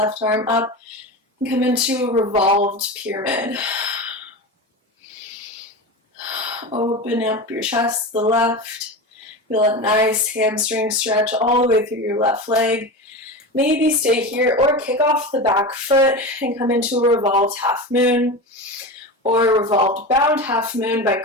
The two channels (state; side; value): normal; both; correlation 0.25